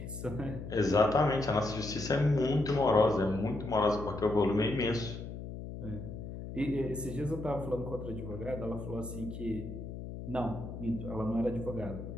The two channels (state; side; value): noise; left; hum, 9 dB below the sound